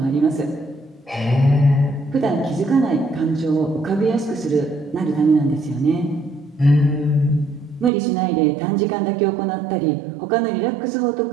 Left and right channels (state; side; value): drops out; left; at 7.9 s